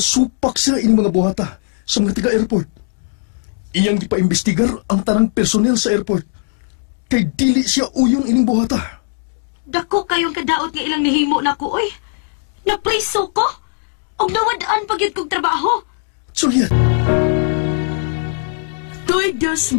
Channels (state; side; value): silent; right; digital silence